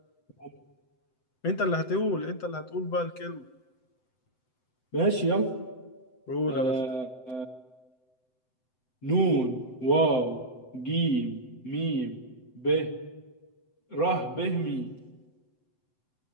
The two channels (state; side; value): late; right; 7.8 ms